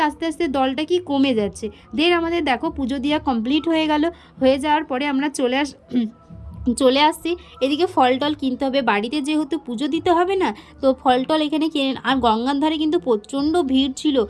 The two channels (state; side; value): identical; both; correlation 1.00